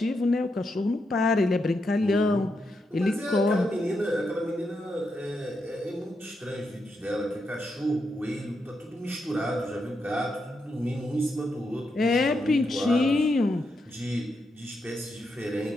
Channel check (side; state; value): both; normal; correlation 0.83